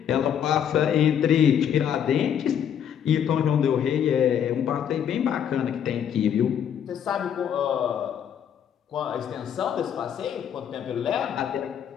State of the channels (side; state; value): right; quieter; 8.9 dB